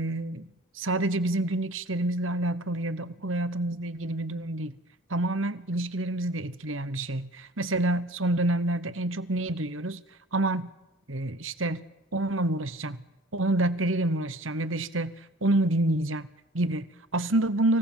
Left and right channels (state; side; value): normal; both; correlation 0.48